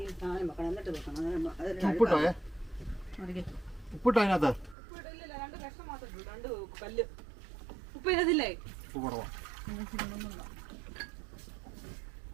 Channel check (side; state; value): left; drops out; at 4.8 s